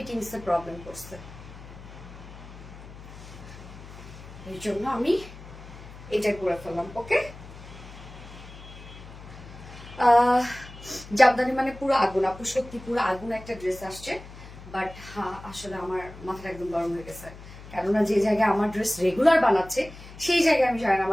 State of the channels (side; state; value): left; noise; hum, 16 dB below the sound